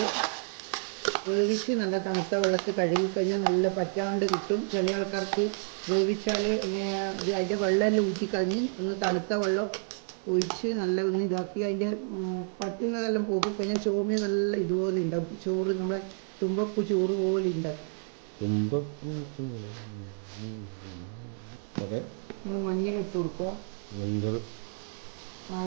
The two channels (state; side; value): silent; left; 58 dB below the other